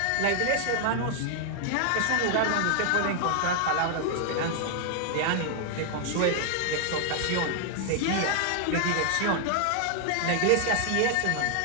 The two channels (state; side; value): different; both; correlation 0.00